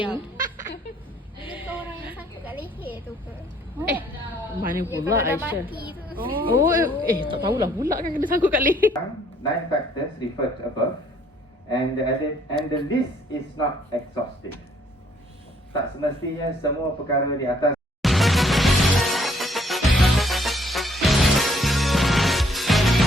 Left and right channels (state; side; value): normal; both; correlation 0.64